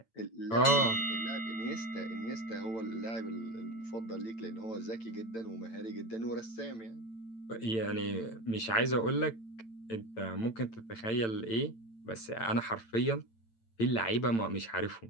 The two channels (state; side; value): late; right; 8.9 ms